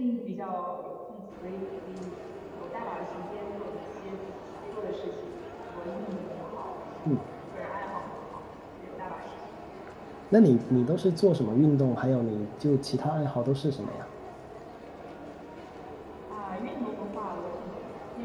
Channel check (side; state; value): both; identical; correlation 1.00